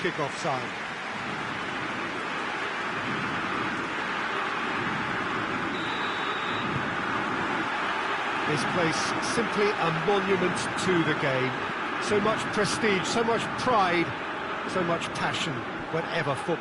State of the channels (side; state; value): both; identical; correlation 1.00